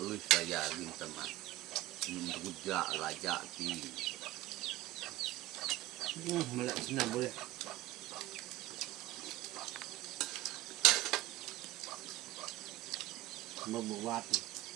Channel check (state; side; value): quieter; left; 16.6 dB